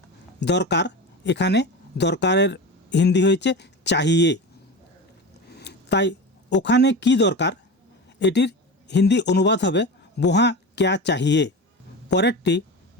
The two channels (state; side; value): normal; both; correlation 0.27